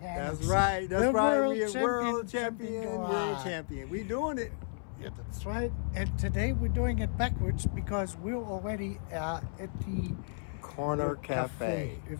That's right. That's the right. World We're world champion, world champion. champion. We're doing it. Yeah, that's right. And today we're doing it backwards because we're already at the Corner Cafe.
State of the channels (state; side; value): silent; right; 56 dB below the other